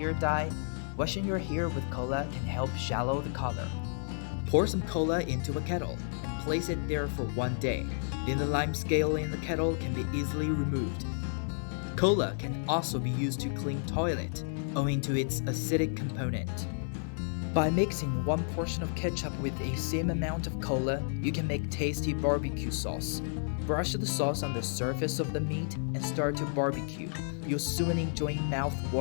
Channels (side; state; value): right; silent; 57 dB below the other